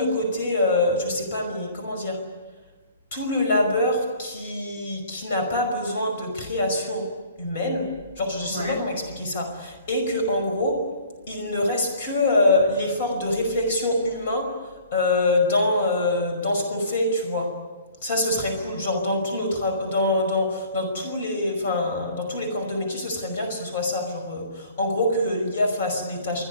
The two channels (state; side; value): inverted; both; correlation -0.52